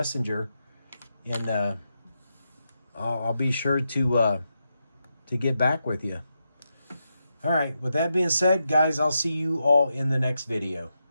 and I'll be sure to get back with you. All right, with that being said, guys, I'll see you all in the next video.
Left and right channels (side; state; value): both; inverted; correlation -0.86